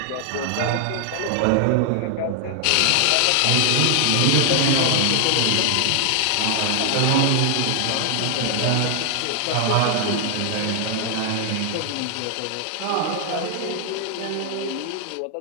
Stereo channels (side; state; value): both; different; correlation 0.00